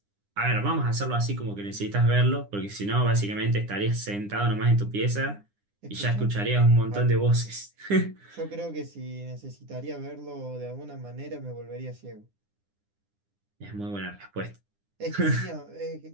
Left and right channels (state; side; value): late; left; 9.9 ms